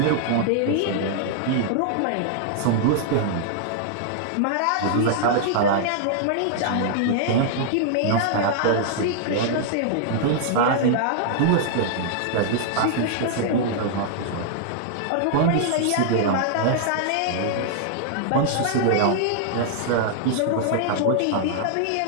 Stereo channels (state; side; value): different; both; correlation -0.01